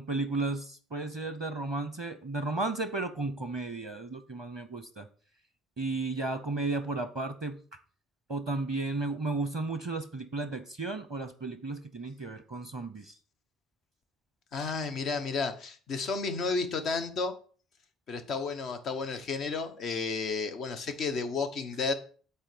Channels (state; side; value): normal; both; correlation 0.45